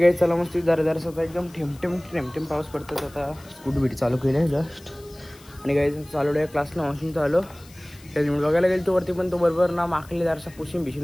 चला मस्त जरा आता एकदम ठेम पाऊस पडतात. आता स्कूटी बिटी चालू केली आहे जस्ट. आणि गाईज चालू आहे क्लासला मशीन चालू. त्याच्यामुळे बघायला गेलो तो वरती, पण तो बरोबर ना माखली जरासा पुशीन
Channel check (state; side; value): noise; left; hiss, 24 dB below the sound